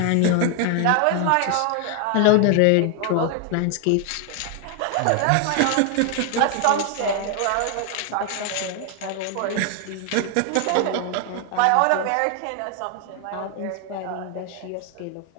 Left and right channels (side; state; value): both; different; correlation 0.00